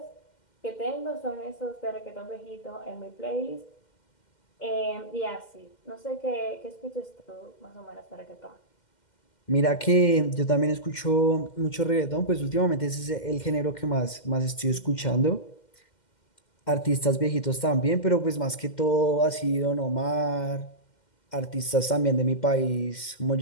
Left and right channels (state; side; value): late; right; 2.1 ms